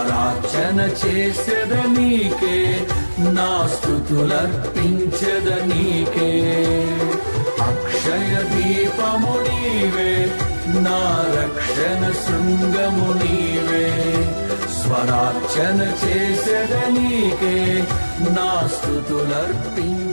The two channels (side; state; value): both; inverted; correlation -1.00